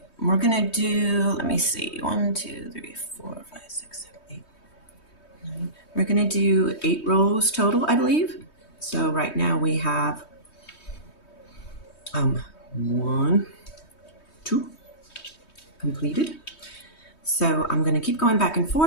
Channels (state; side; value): late; right; 3.2 ms